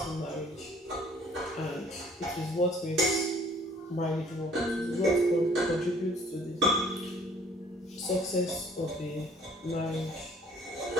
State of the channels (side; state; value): both; normal; correlation 0.57